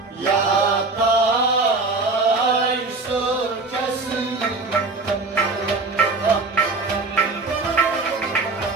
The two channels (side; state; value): left; quieter; 3.7 dB